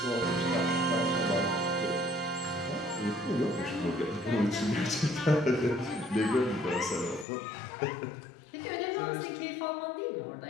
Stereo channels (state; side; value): drops out; right; at 7.2 s